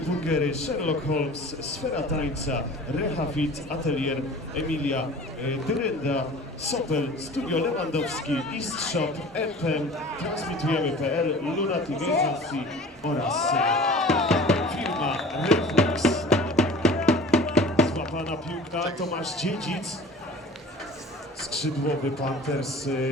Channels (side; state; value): both; normal; correlation 0.42